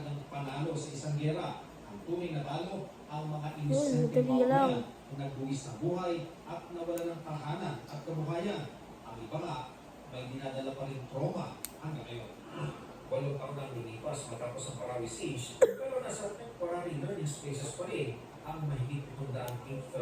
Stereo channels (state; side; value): identical; both; correlation 1.00